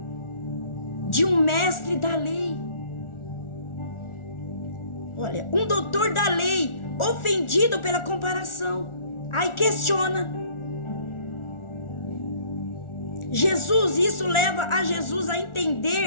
de um mestre da lei. Olha, um doutor da lei, ofendido pela comparação. Aí questiona Jesus, isso leva a Jesus a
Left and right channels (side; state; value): right; late; 1.4 ms